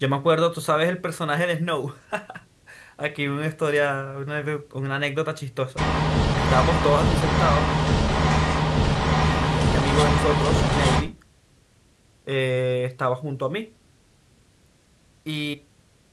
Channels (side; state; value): both; identical; correlation 1.00